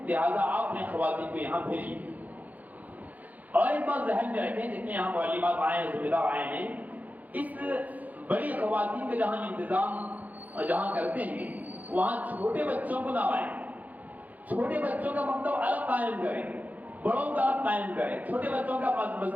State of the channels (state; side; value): late; left; 0.079 ms